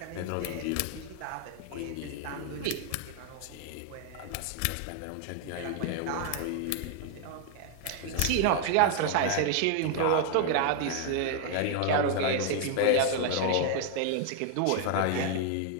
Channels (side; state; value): both; different; correlation 0.00